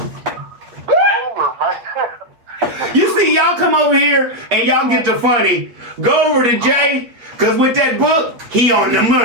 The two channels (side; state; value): left; late; 8.4 ms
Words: Over, man. You see, y'all come over here and y'all get the funny. Go over to Jay, because with that book, he on the